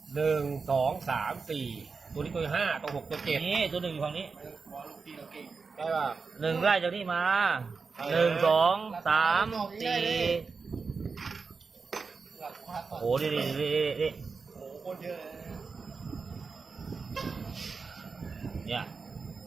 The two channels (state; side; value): quieter; left; 4.8 dB